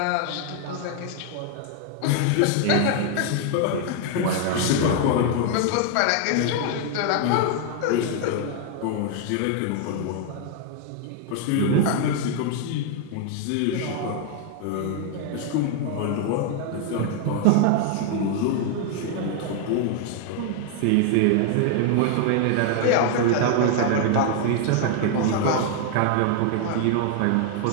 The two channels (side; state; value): both; different; correlation 0.00